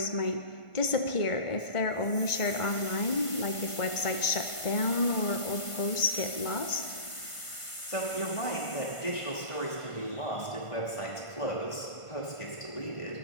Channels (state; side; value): late; right; 1.5 ms